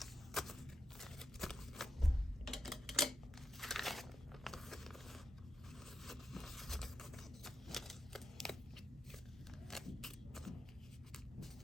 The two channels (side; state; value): both; normal; correlation 0.87